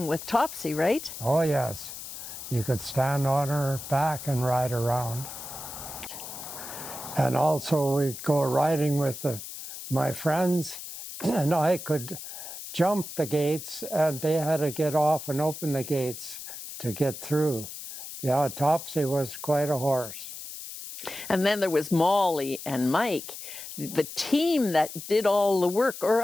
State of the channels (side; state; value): left; noise; hiss, 10 dB below the sound